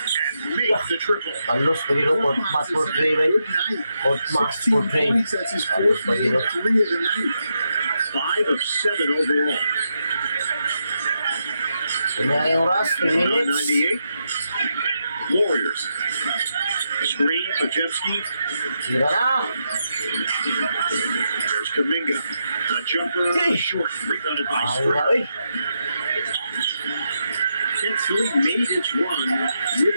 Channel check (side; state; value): both; inverted; correlation -0.83